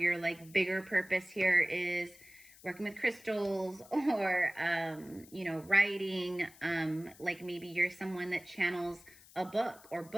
like bigger purpose here is working with crystals or, writing. Like maybe you're someone that channels a book or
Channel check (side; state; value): left; noise; hiss, 22 dB below the sound